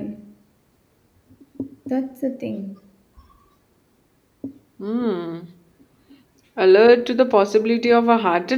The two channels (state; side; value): identical; both; correlation 1.00